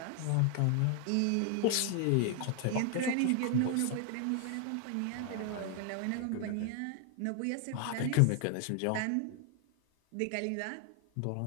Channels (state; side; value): different; both; correlation 0.00